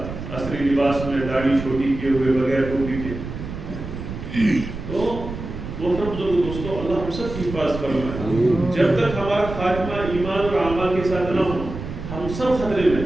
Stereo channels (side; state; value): right; noise; rumble, 8 dB below the sound